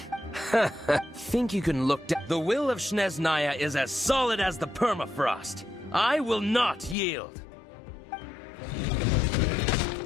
Think you can look down? The will of Snezhnaya is as solid as the permafrost. I will not yield.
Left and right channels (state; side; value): drops out; right; at 7.0 s